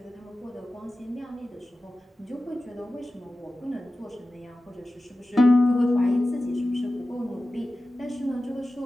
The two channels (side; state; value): both; normal; correlation 0.94